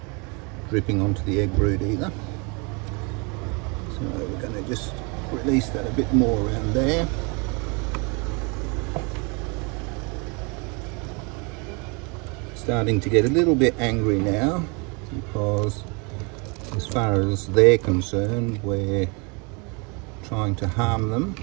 dripping onto the egg brood either, so we're going to just release that a bit more around there. Starting to get a little bit angry now, because as far as they're concerned we're trying to harm them.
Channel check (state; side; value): quieter; left; 31.5 dB